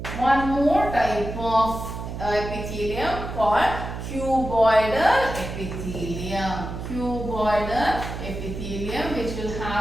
one more type of epithelium called cuboidal epithelium. cuboidal epithelium which will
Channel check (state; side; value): noise; right; hum, 7 dB below the sound